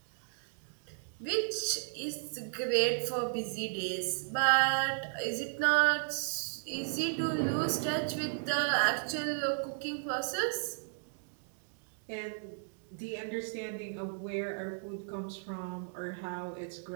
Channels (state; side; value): silent; left; digital silence